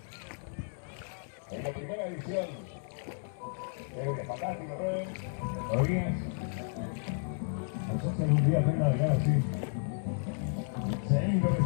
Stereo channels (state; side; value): silent; right; 56 dB below the other